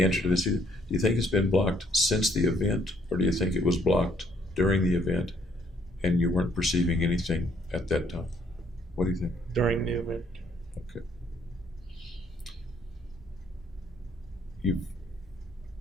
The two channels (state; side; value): normal; both; correlation 0.66